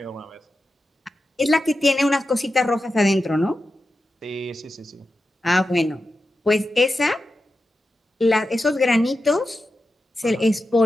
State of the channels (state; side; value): normal; both; correlation 0.90